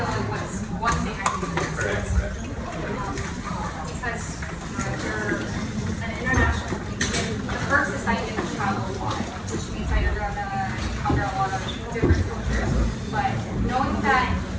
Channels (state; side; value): identical; both; correlation 1.00